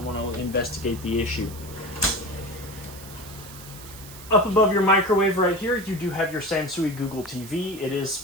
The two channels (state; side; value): noise; right; hiss, 16 dB below the sound